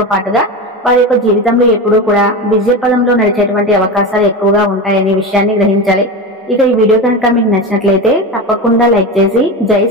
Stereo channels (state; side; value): normal; both; correlation 0.22